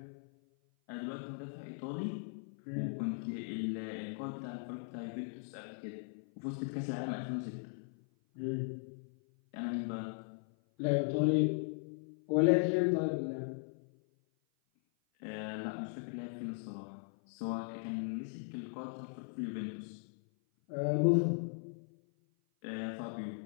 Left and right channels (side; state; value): right; silent; 52 dB below the other